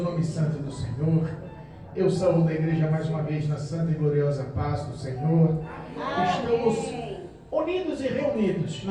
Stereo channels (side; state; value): both; identical; correlation 1.00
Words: nome santo do Senhor. Eu saúdo a igreja mais uma vez na santa e gloriosa paz do Senhor. Estamos unidos e reunidos